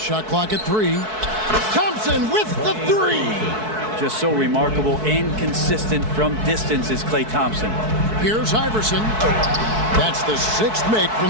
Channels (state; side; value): late; left; 4.6 ms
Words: clock at 3. Thompson with the 3. Just so remarkable and consistent from distance is Klay Thompson. Here's Iverson. That's the 6th make from